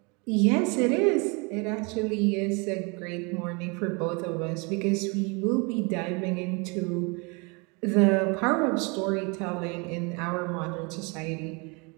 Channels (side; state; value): left; quieter; 30.7 dB